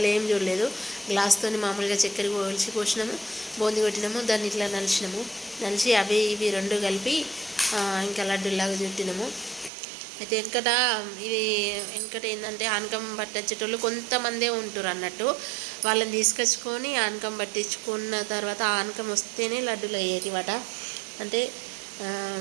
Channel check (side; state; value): left; drops out; at 9.7 s